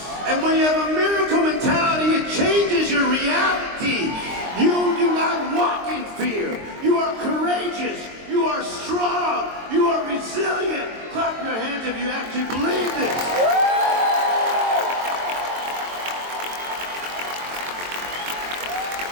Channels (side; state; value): left; late; 23 ms